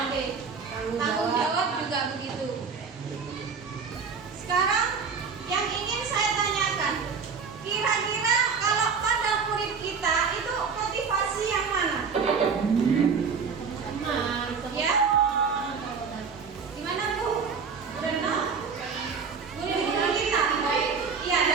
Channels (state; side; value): quieter; left; 5.6 dB